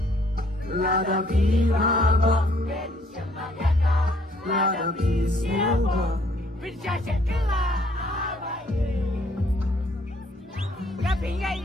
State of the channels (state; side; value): normal; both; correlation 0.64